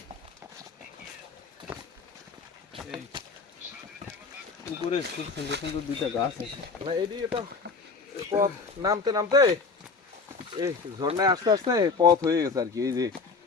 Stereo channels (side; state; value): right; quieter; 4.5 dB